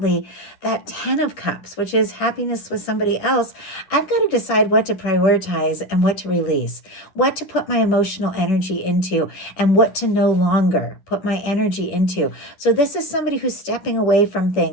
that 10 of Cups, which is happiness with somebody else, I've got to decide what to prioritize and what to release, what to put my emotional energy into, and what to no longer put my energy into. So this is somebody who's stepping away from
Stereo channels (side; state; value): right; late; 10 ms